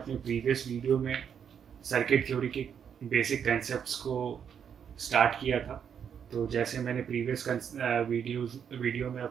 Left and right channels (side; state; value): left; quieter; 7.8 dB